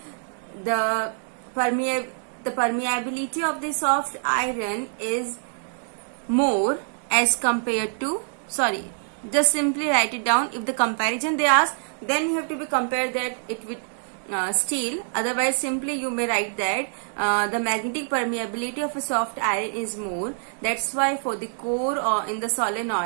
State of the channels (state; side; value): silent; left; 62 dB below the other